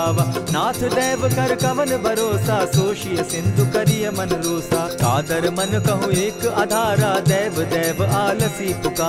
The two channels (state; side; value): identical; both; correlation 1.00